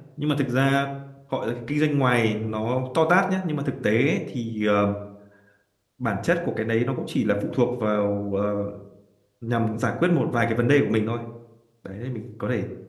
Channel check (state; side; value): identical; both; correlation 1.00